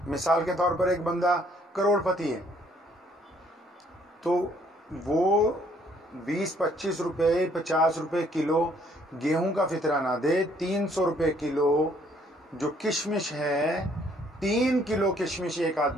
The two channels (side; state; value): both; normal; correlation 0.64